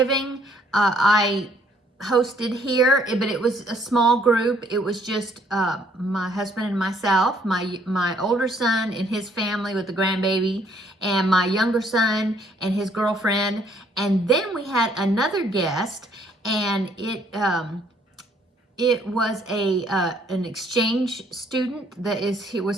I hosted here, but it was a small group. It was just my husband and myself, my older son and his family with the grandbaby, and my younger son and his girlfriend. And then we had another guest, and it was an exchange student that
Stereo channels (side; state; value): both; normal; correlation 0.65